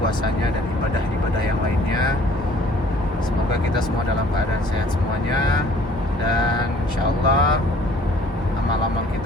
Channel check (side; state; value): both; normal; correlation 0.55